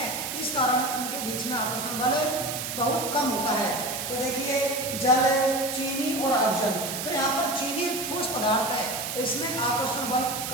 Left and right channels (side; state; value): right; noise; hiss, 5 dB below the sound